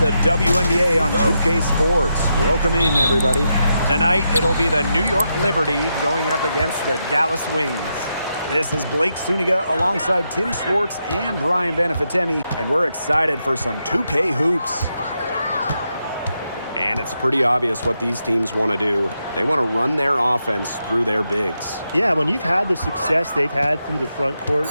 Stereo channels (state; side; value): inverted; both; correlation -0.84